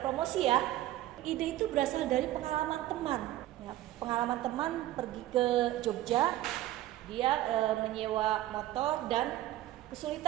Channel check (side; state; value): left; quieter; 14.6 dB